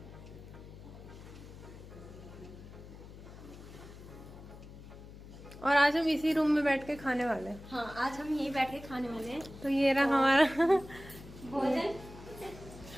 और आज हम इसी रूम में बैठ के खाने वाले हैं। हाँ, आज हम यहीं बैठ के खाने वाले हैं। तो ये रहा हमारा भोजन।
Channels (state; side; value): noise; left; hum, 16 dB below the sound